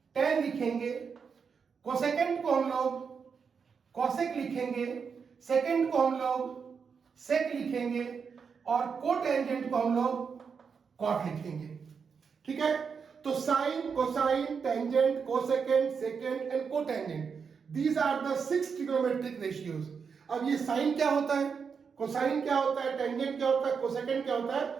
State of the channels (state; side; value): quieter; left; 6.0 dB